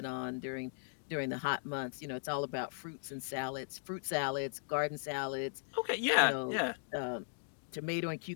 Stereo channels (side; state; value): right; silent; digital silence